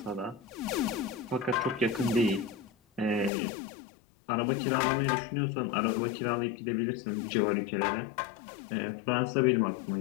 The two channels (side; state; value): right; drops out; at 3.3 s